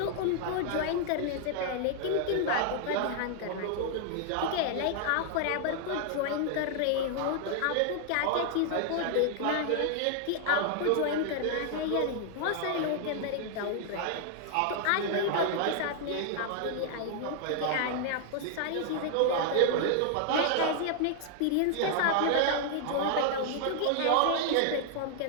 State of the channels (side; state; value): both; different; correlation 0.00